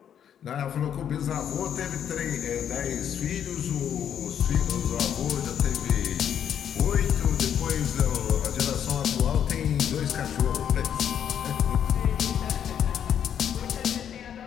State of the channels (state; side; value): quieter; right; 9.1 dB